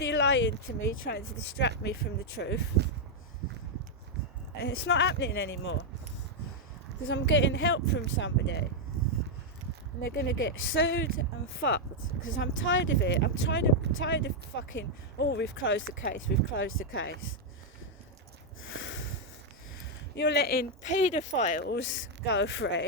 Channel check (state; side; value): normal; both; correlation -0.01